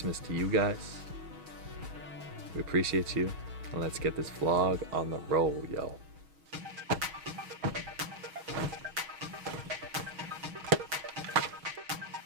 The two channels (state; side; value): late; left; 6.3 ms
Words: to you guys. We appreciate you. And let's get this vlog on the roll, yo.